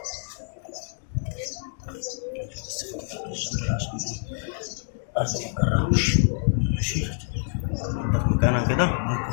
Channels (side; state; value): right; silent; digital silence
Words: بس فوق تحت الشنطة عشان ايه الأرض ما تجرحوش. ماشي. ننضف مكانها كده.